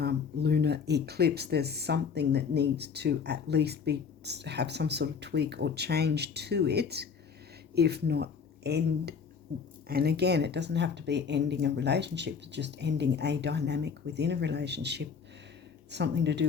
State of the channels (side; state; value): right; quieter; 6.2 dB